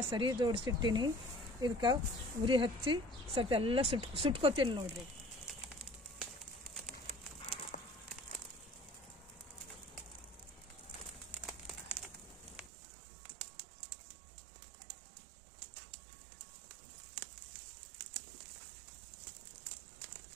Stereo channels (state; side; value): drops out; left; at 12.7 s